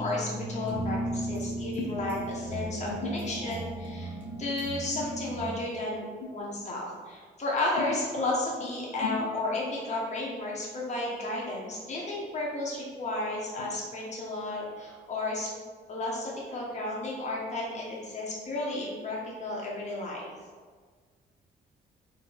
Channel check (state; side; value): normal; both; correlation 0.31